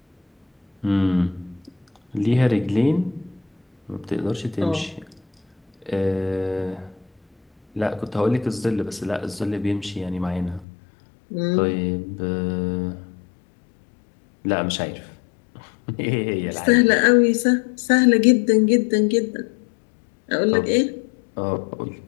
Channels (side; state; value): right; drops out; at 10.7 s